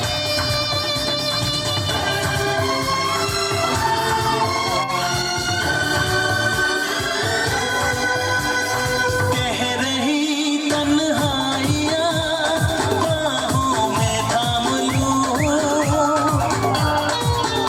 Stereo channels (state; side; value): identical; both; correlation 1.00